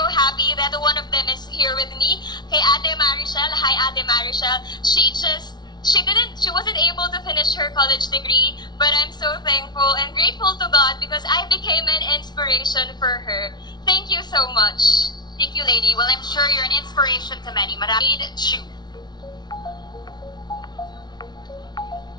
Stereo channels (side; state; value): right; late; 0.20 ms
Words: happy that one of them is here with me. Kay Ate Marichel. Hi, Ate Marichel. She wasn't able to finish her college degree, but I'm so thankful and grateful to God because I became an inspiration for her. Thank you so much. Thank you, lady. Well, I'm sure you're an inspiration to many. Maraming Chu.